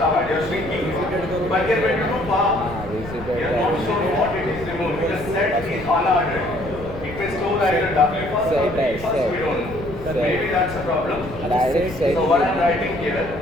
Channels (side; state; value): left; noise; rumble, 13 dB below the sound